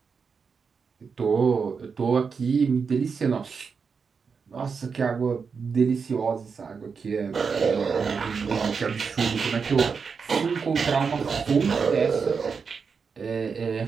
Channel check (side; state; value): left; quieter; 5.6 dB